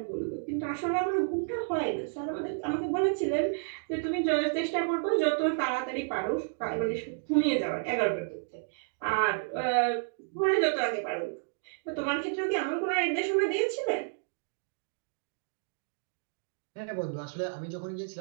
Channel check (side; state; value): left; silent; digital silence